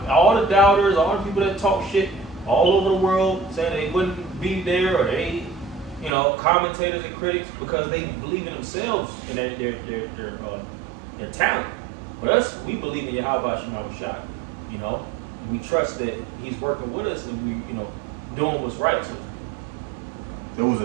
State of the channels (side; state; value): left; drops out; at 6.1 s